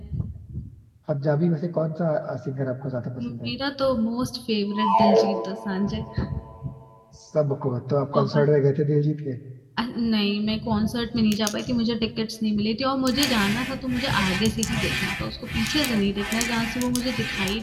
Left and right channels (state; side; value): identical; both; correlation 1.00